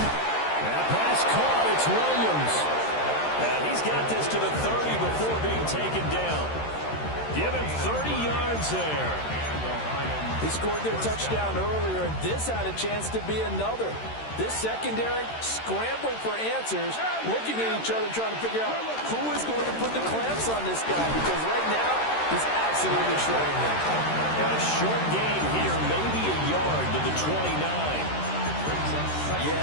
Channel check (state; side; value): late; right; 13 ms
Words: That pass caught. It's Williams. He's got this to the 30 before being taken down. Give him 30 yards there. They scored their touchdown earlier, and this had a chance to be another. This secondary scrambling for answers, looking at each other, trying to figure out who is going to put the clamps on this guy, because right now he's absolutely shredding them. A short gain here, maybe a yard to the 29.